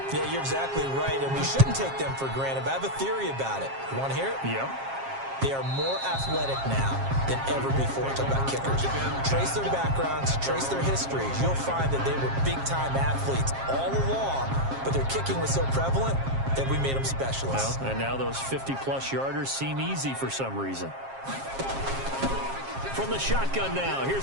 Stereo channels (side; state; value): left; late; 7.4 ms